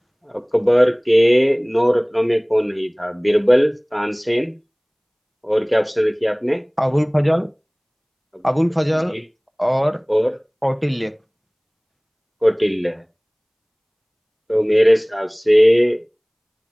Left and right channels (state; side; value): identical; both; correlation 1.00